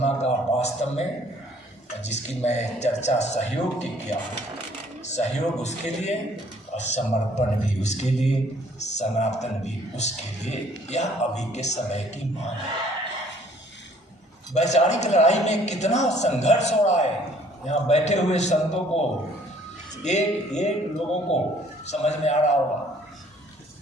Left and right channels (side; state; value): both; normal; correlation 0.59